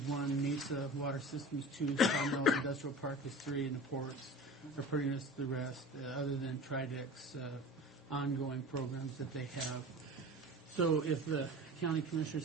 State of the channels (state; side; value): normal; both; correlation 0.36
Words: 1, Mesa Water Systems 2, Connell Industrial Park is 3, and the ports are pretty much the rest, other than Tridec's ongoing programs that they have. So if the county